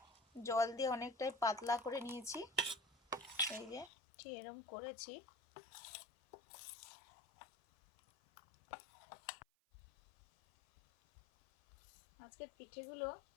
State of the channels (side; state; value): right; drops out; at 3.9 s